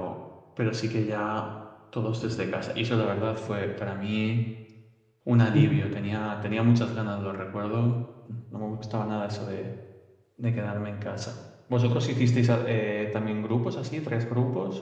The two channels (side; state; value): both; identical; correlation 1.00